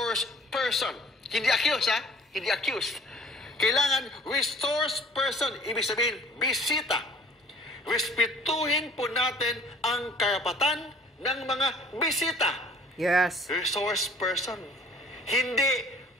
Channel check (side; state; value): both; normal; correlation 0.51